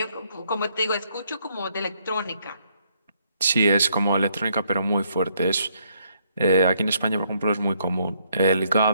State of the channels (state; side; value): inverted; both; correlation -0.71